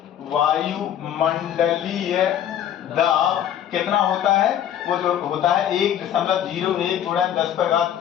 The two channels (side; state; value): right; quieter; 10.3 dB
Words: वायुमंडलीय दाब कितना होता है? वो जो होता है 1.01 गुणा